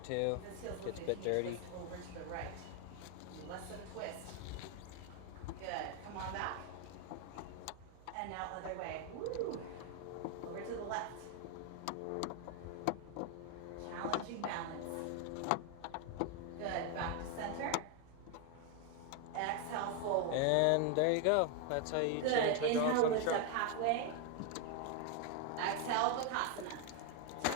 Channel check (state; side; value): different; both; correlation 0.01